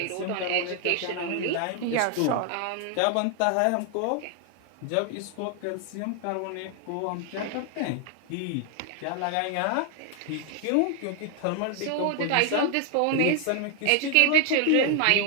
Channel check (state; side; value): different; both; correlation 0.00